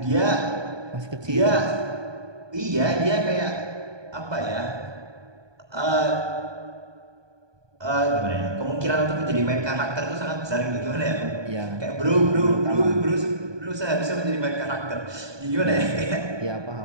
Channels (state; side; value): late; left; 1.2 ms